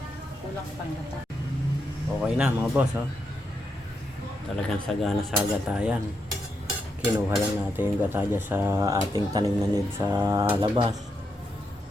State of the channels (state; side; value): normal; both; correlation 0.82